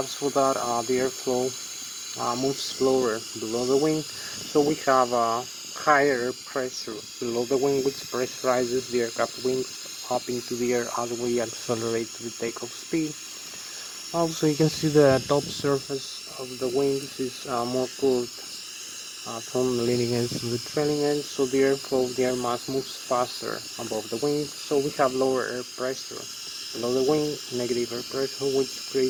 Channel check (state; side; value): identical; both; correlation 1.00